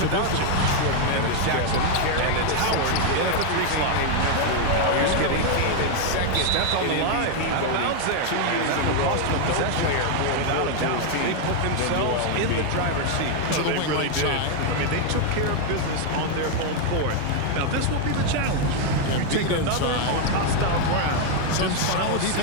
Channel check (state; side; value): different; both; correlation 0.01